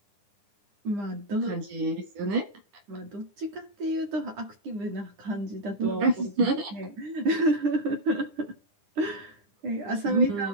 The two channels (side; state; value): left; late; 9.8 ms